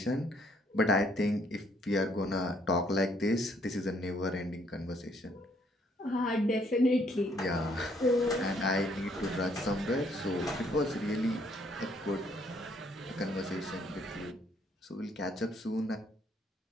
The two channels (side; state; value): both; normal; correlation 0.67